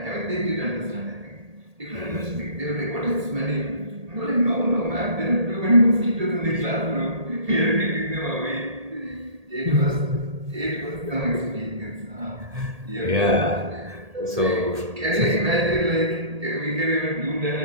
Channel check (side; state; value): left; late; 1.8 ms